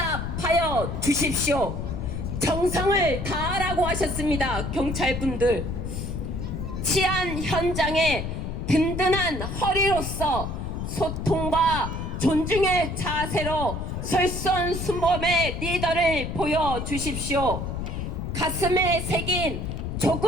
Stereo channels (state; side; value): noise; left; rumble, 4 dB below the sound